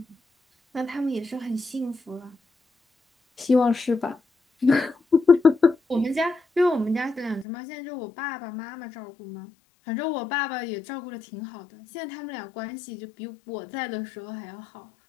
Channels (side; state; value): right; drops out; at 7.5 s